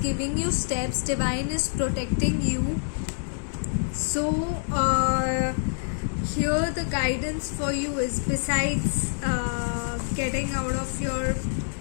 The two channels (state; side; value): silent; right; digital silence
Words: you steps, divine is protecting you. So here the guidance for you is, besides getting out of your